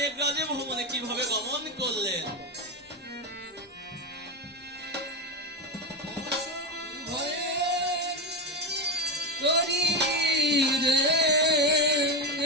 ভবনে কিভাবে গমন করলেন।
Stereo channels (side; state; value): both; normal; correlation 0.14